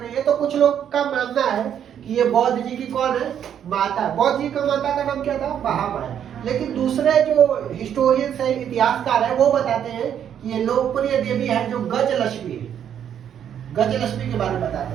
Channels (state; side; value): quieter; left; 9.2 dB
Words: है, तो कुछ लोग का मानना है कि ये बौद्ध जी की कौन है, माता। बौद्ध जी का माता का नाम क्या था, महामाया। लेकिन दूसरे जो हिस्टोरियंस है, इतिहासकार है, वो बताते हैं कि ये लोकप्रिय देवी है जो गजलक्ष्मी है। गजलक्ष्मी के बारे में